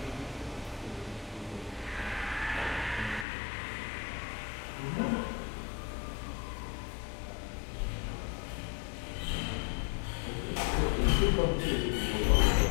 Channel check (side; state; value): right; drops out; at 3.2 s